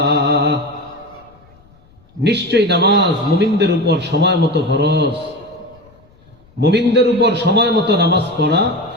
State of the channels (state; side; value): noise; left; rumble, 29 dB below the sound